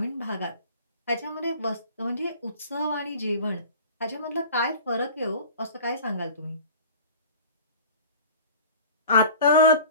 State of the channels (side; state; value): both; inverted; correlation -0.41